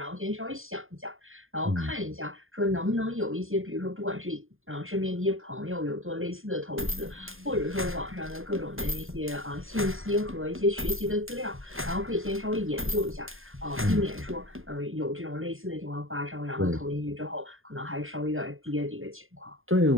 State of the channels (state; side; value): late; left; 0.60 ms